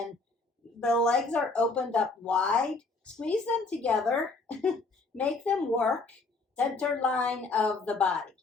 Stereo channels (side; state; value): right; quieter; 3.7 dB